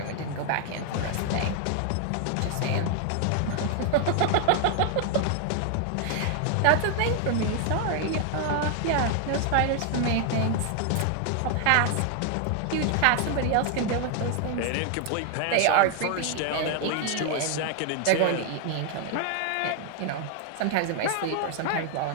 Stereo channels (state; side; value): different; both; correlation 0.00